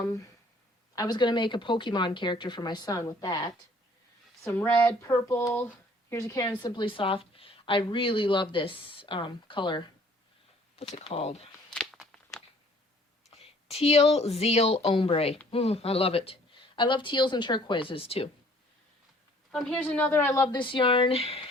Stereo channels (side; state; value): both; normal; correlation 0.57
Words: was going to make a Pokemon character for my son with that. Some red, purple. Here's a Karen Simply Soft. I really love this color. What's it called? Teal Zeal Ombre. I love it. I love teals and turquoises too. Here's another. I love this yarn.